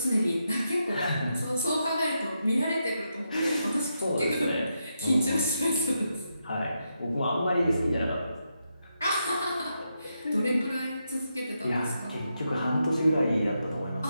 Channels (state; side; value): inverted; both; correlation -0.84